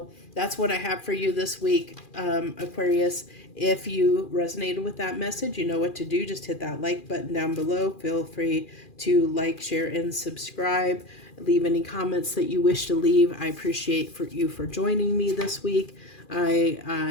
that's what I have for you this week, Aquarius. If you resonated with that message, you know what to do. Just hit that like button down below. Feel free to like, share, and subscribe. Leave any comments that you wish to leave. I appreciate you for joining me this week.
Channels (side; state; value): right; late; 2.4 ms